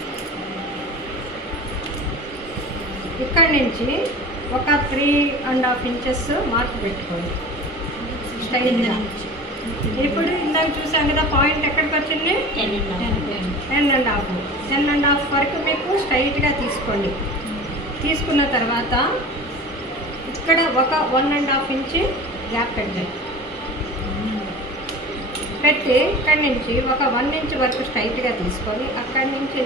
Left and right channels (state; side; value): normal; both; correlation 0.37